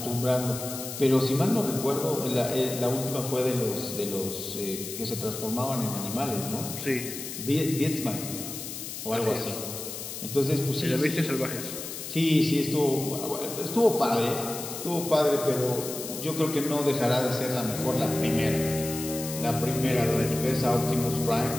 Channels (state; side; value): noise; left; hiss, 8 dB below the sound